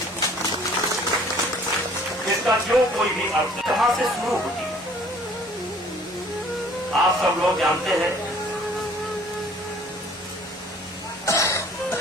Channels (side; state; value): both; normal; correlation 0.55